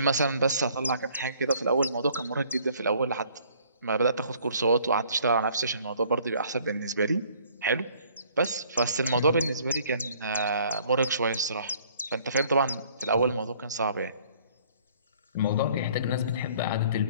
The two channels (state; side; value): inverted; both; correlation -0.58